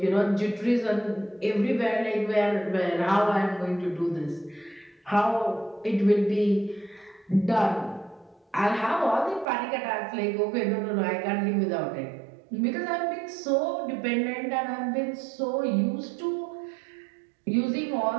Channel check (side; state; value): left; drops out; at 9.5 s